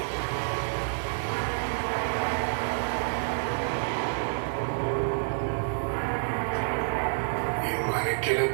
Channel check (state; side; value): silent; left; digital silence